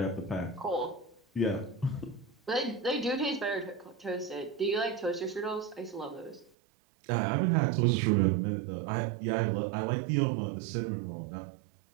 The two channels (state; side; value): drops out; left; at 6.5 s